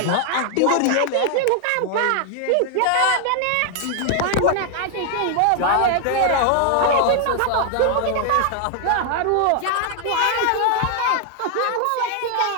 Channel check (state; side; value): different; both; correlation 0.00